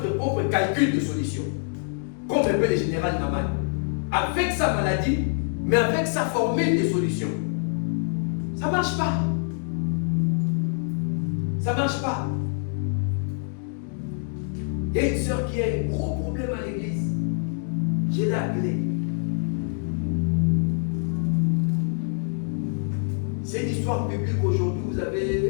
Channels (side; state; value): right; silent; 57 dB below the other